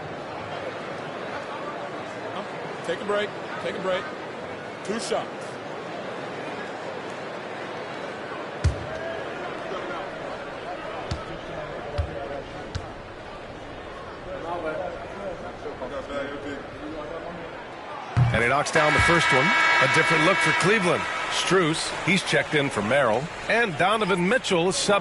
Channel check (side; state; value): both; identical; correlation 1.00